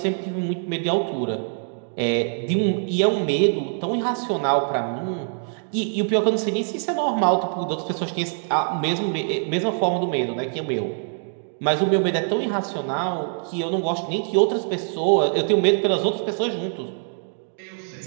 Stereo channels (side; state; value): left; silent; digital silence